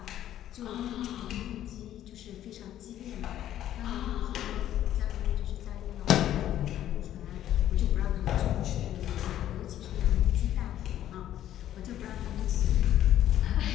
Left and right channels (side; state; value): right; quieter; 12.0 dB